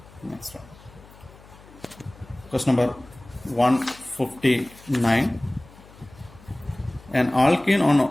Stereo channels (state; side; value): noise; left; hum, 22 dB below the sound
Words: Next one. Question number 159. An alkene